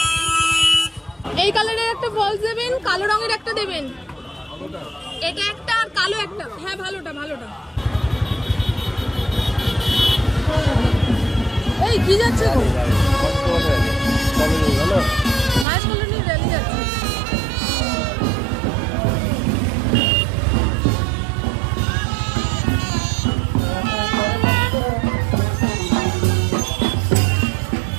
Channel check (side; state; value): left; drops out; at 15.7 s